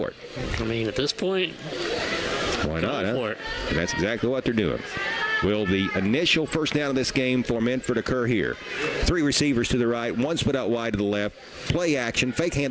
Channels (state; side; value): identical; both; correlation 1.00